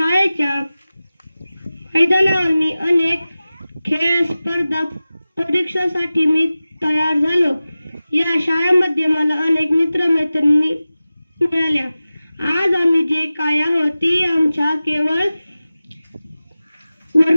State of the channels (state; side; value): inverted; both; correlation -0.96